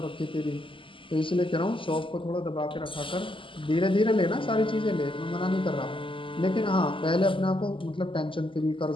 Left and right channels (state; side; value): late; right; 0.25 ms